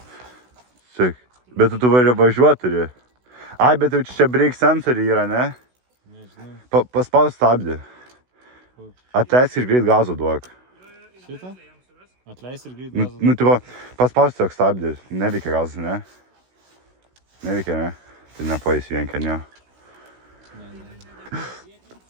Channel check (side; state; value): left; late; 16 ms